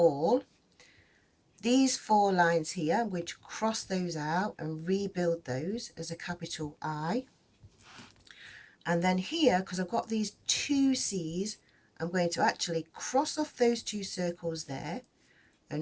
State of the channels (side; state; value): both; identical; correlation 1.00